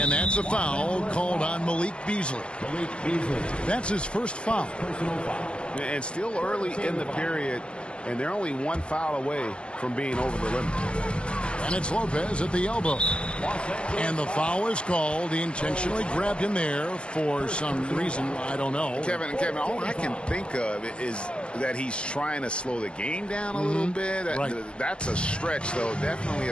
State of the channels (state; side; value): late; right; 0.057 ms